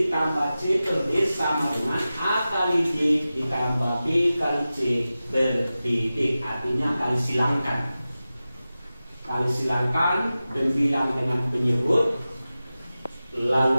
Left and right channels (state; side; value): inverted; both; correlation -0.95